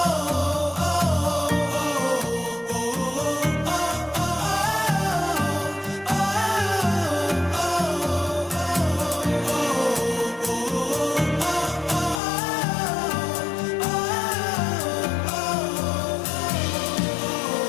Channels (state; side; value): drops out; right; at 12.2 s